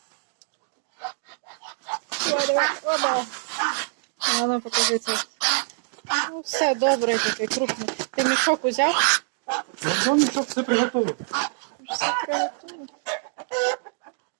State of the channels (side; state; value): left; silent; 62 dB below the other